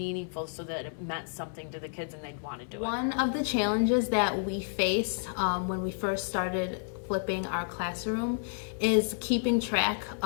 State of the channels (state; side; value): silent; right; 57 dB below the other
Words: so that it meant something to the kids and they'd want to do it. One of the challenges that we faced when we first started flipping our classroom is keeping track